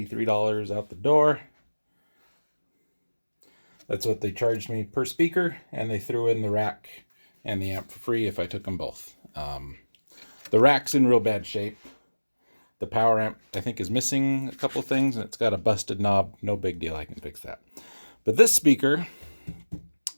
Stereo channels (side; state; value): both; inverted; correlation -1.00